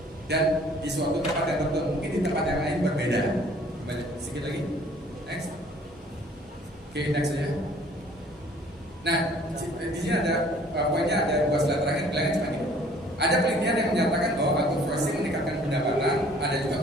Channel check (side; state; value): both; normal; correlation 0.55